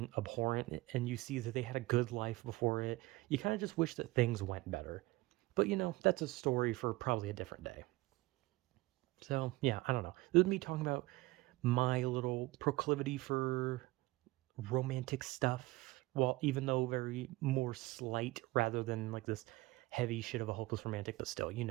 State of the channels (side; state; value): left; quieter; 20.5 dB